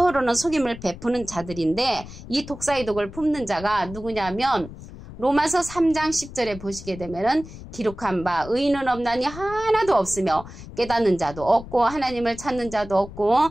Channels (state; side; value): noise; left; rumble, 14 dB below the sound